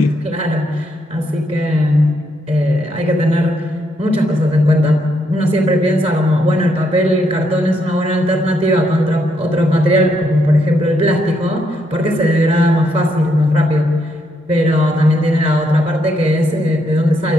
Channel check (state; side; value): normal; both; correlation 0.76